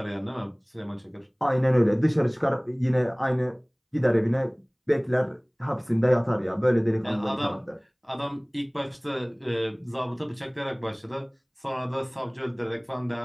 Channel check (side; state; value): both; identical; correlation 1.00